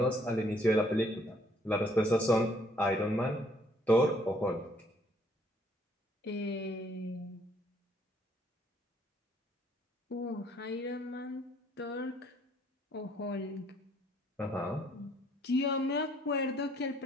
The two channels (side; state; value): both; normal; correlation 0.65